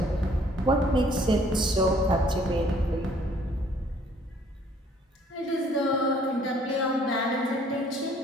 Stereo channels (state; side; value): normal; both; correlation 0.60